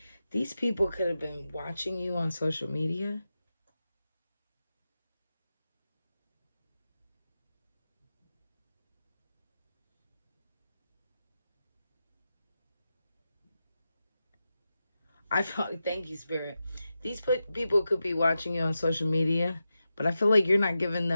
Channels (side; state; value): both; inverted; correlation -0.91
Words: These people could have been watching you on social media. I felt, thank you, Spirit. These people could be watching you on social media, but I feel like you're not giving